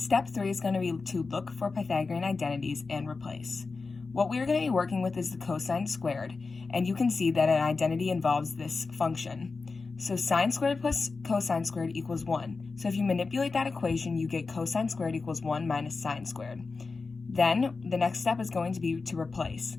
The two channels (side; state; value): right; quieter; 4.2 dB